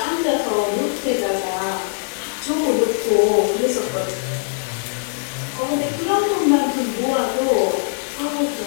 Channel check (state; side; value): silent; right; digital silence